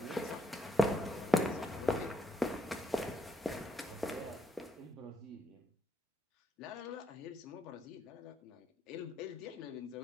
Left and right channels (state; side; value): normal; both; correlation 0.77